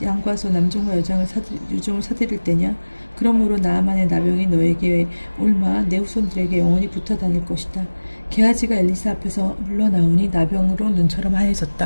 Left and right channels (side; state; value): both; inverted; correlation -1.00